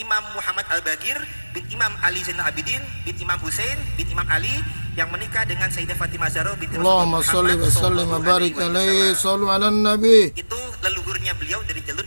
Muhammad Al-Bagir, bin Imam Ali Zainal Abidin, bin Imam Husain, bin Imam Ali, yang menikah dengan Sayyidah Fatimah Zahra binti Allahumma sholli wa sallim wa barik alaihi, shallu ala nabi. Itu leluhurnya beliau dari jalur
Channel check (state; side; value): inverted; both; correlation -1.00